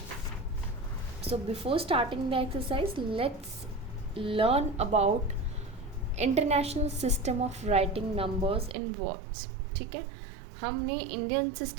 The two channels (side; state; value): left; drops out; at 8.8 s